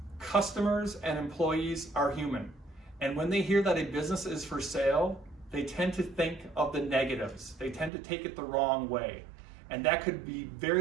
customers and employees are human. And when they hear that a business is for sale, they tend to think of the negatives. They tend to take it the wrong way. And that could be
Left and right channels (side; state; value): left; drops out; at 7.9 s